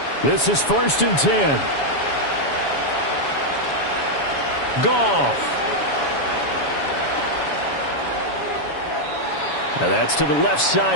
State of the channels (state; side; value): late; right; 7.1 ms